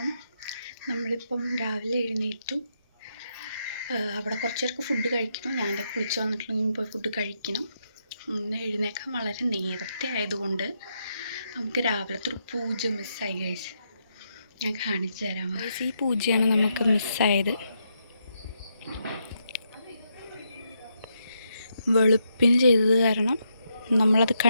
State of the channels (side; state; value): both; inverted; correlation -0.80